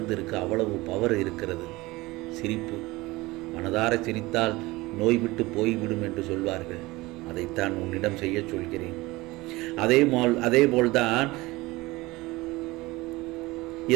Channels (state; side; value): quieter; left; 20.9 dB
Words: இருக்கு, அவ்வளவு பவர் இருக்கிறது. சிரிப்பு. மனதார சிரித்தால் நோய் விட்டு போய்விடும் என்று சொல்வார்கள். அதைத்தான் உன்னிடம் செய்ய சொல்கிறேன். அதேபோல்தான்